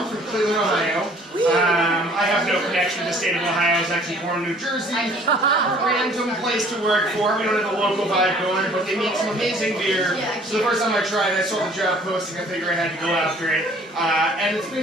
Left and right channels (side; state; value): both; normal; correlation 0.55